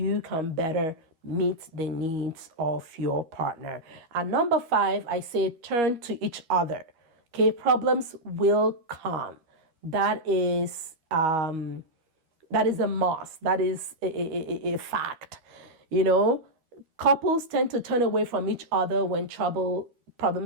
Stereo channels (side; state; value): left; late; 13 ms